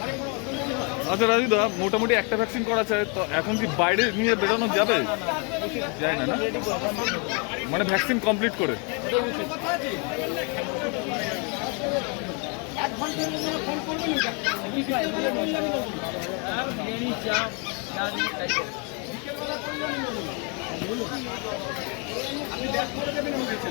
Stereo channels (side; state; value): right; quieter; 35.0 dB